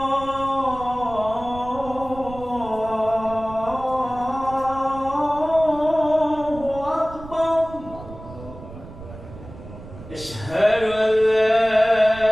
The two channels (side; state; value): right; noise; rumble, 15 dB below the sound